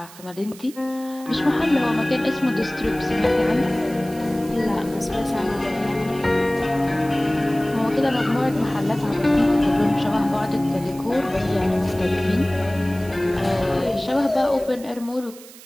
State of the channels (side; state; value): right; noise; hiss, 19 dB below the sound